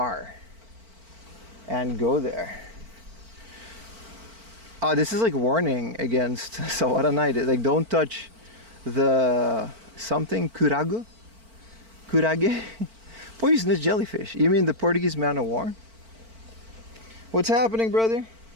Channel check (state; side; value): late; left; 4.4 ms